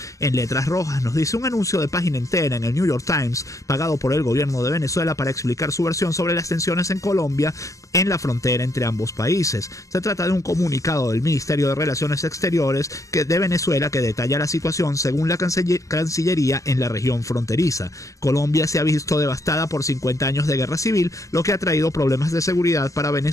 en letras rojas. Nos dice: un anuncio de página entera en el New York Times, pagado por el gobierno de Venezuela para explicar su versión sobre las tensiones en Colombia en la frontera entre ambos países. Se trata de un comunicado del Ministerio de Relaciones Exteriores de Venezuela que detalla la situación según la Cancillería en la región fronteriza. Colombia se ha visto devastada por 50 años de guerra civil, lo que ha traído problemas de seguridad para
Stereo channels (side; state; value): right; late; 0.16 ms